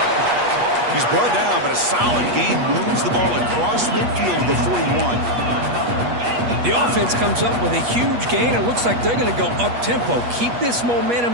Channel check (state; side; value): late; left; 8.3 ms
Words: He's brought down, but a solid gain moves the ball across midfield to the 41. The offense comes up with a huge gain. It looks like they're going to go up-tempo. Keep this